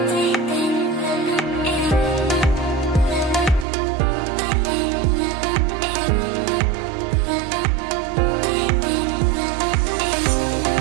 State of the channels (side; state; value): left; drops out; at 3.7 s